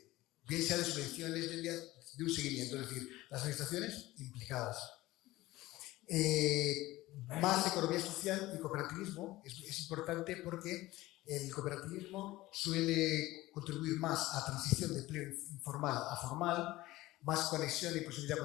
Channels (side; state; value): right; quieter; 17.8 dB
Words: bien sea de subvenciones, de un seguimiento, es decir, las administraciones implicadas. Más economía social y cooperativismo es importante porque el cooperativismo suele contribuir más a la transición de empleo informal a formal, más conexión y proximidad